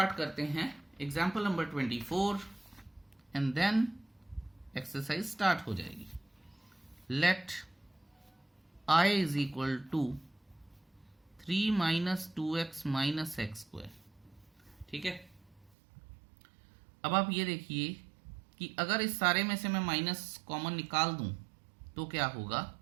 करते हैं, example number 24, and then exercise start हो जाएगी। Let I is equal to 3 minus 2x minus x square, ठीक है। अब आप ये देखिए कि अगर इस सारे में से मैं माइनस कॉमन निकाल दूं तो क्या होगा,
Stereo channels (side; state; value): left; drops out; at 15.7 s